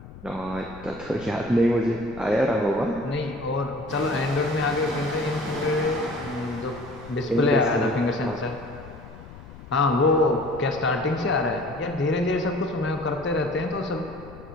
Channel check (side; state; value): left; noise; rumble, 17 dB below the sound